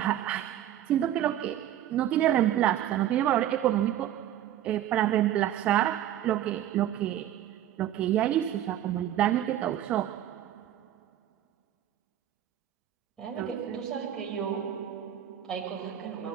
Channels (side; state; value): left; quieter; 11.7 dB